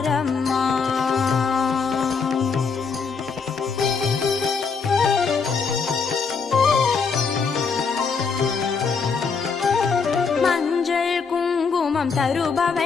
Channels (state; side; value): quieter; right; 5.4 dB